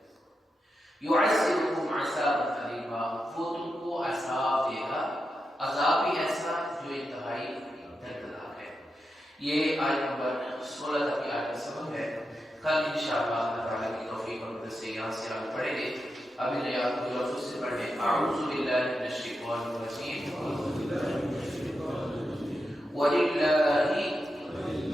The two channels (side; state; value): both; normal; correlation 0.88